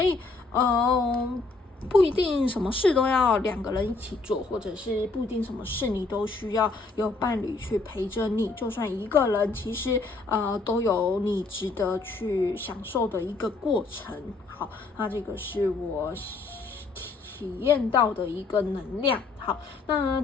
以不一定什么事都要两个人一起做，或者是不一定什么事你都需要有伴侣去陪着你，就算一个人，其实都有你值得去享受的一个过程。好，那这个是我体验到的一个能量。好，那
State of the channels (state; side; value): quieter; right; 3.8 dB